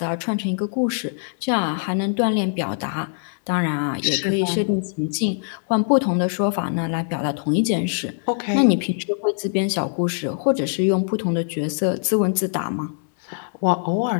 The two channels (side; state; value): right; silent; digital silence